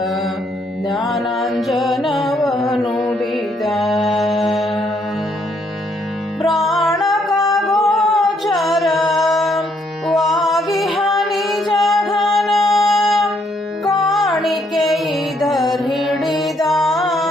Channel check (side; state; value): both; normal; correlation 0.71